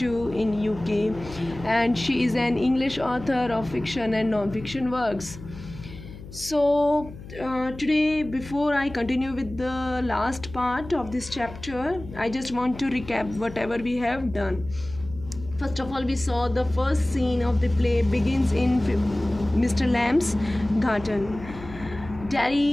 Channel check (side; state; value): left; noise; hum, 15 dB below the sound